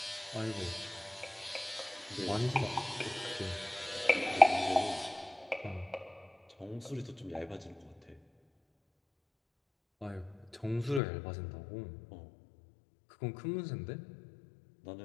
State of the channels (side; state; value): right; drops out; at 11.0 s